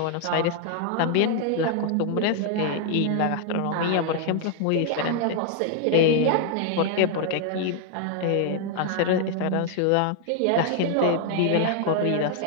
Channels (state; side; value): different; both; correlation 0.00